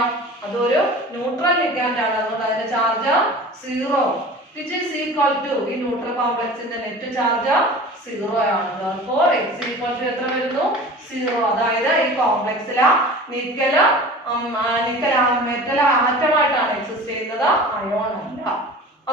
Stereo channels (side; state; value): both; normal; correlation 0.39